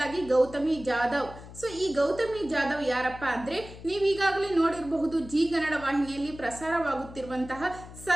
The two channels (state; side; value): noise; left; hum, 16 dB below the sound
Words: ಗೌತಮಿ ಜಾಧವ್. ಸೊ ಈ ಗೌತಮಿ ಜಾಧವ್ ಯಾರಪ್ಪ ಅಂದ್ರೆ ನೀವೀಗಾಗಲೇ ನೋಡಿರಬಹುದು, ಜಿ ಕನ್ನಡ ವಾಹಿನಿಯಲ್ಲಿ ಪ್ರಸಾರವಾಗುತ್ತಿರುವಂತಹ